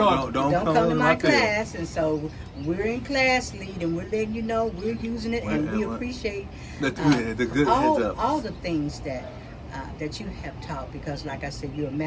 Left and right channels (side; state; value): both; identical; correlation 1.00